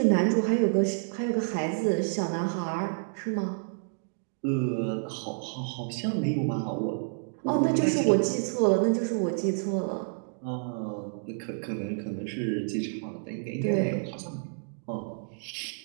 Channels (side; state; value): left; silent; digital silence